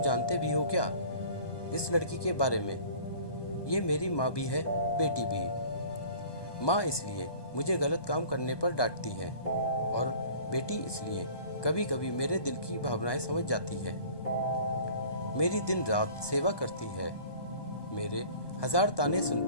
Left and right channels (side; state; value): right; late; 1.2 ms